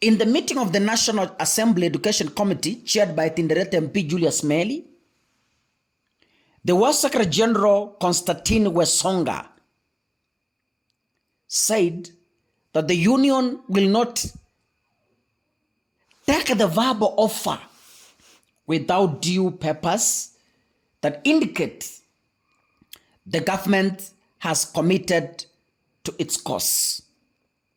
In the meeting of the National Assembly Education Committee, chaired by Tinderet MP Julius Meli, the UASU Secretary General Constantine Wesonga said that the union will not take the verbal offer without due papers that indicate the government has committed to its cause.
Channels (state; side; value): identical; both; correlation 1.00